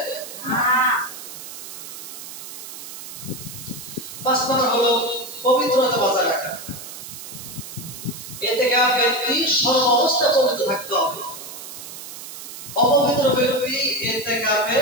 না। 5 নম্বর হলো পবিত্রতা বজায় রাখা। ইতিকাফ ব্যক্তি সর্ব অবস্থায় পবিত্র থাকতে হবে। অপবিত্র ব্যক্তি ইতিকাফে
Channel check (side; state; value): right; noise; hiss, 12 dB below the sound